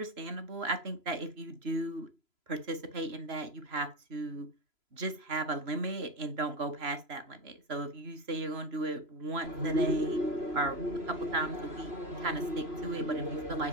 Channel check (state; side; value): late; left; 3.0 ms